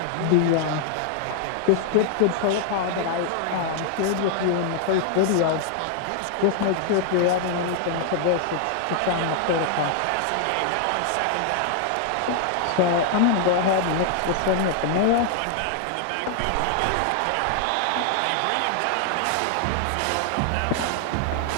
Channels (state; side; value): different; both; correlation 0.00